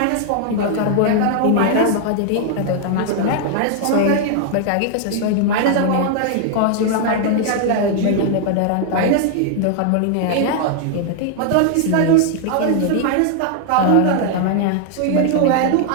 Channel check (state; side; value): different; both; correlation 0.00